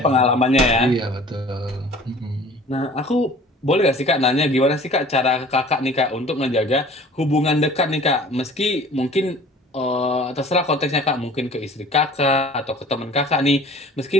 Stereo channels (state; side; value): normal; both; correlation 0.48